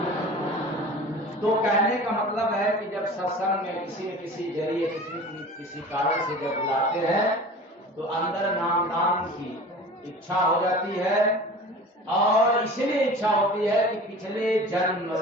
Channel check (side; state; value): both; normal; correlation 0.39